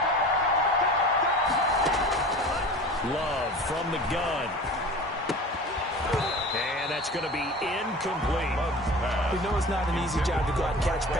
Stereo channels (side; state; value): both; normal; correlation 0.37